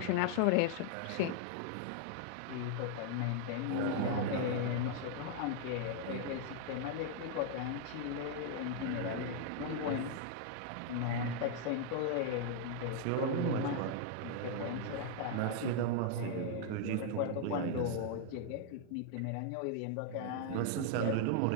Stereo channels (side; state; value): both; different; correlation 0.00